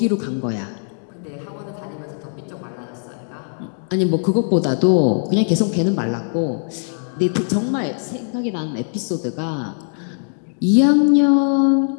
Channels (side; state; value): right; silent; digital silence